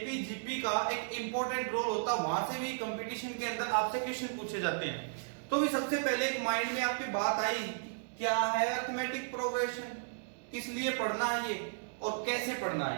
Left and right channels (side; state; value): left; silent; digital silence